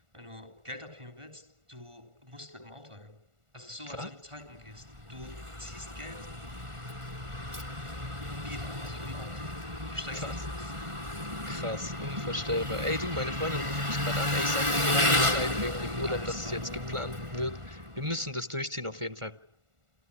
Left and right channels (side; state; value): left; late; 1.4 ms